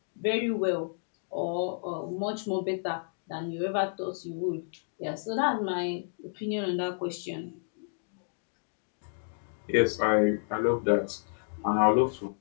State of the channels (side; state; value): right; silent; digital silence